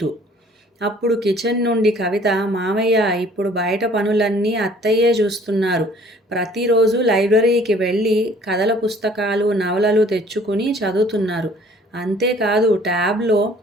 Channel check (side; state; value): both; normal; correlation 0.55